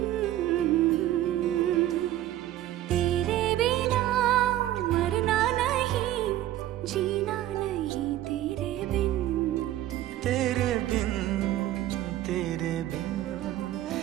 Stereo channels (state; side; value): quieter; left; 13.9 dB